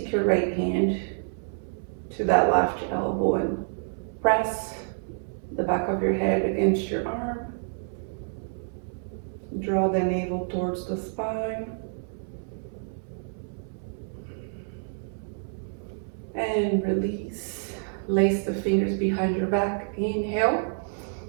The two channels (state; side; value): silent; left; 59 dB below the other